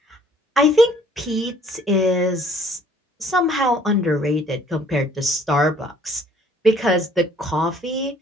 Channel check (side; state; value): both; normal; correlation 0.58